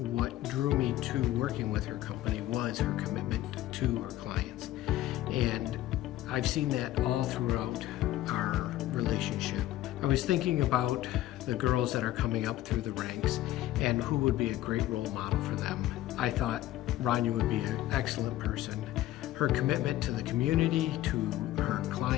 drew me to working with her company was her commitment to her clients. And I've seen that all throughout our relationship. I was thinking about the girls that are coming up through the ranks and who would be a great role model for them. I thought Rania would be an excellent person. Her commitment to the community, to her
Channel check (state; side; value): quieter; right; 14.6 dB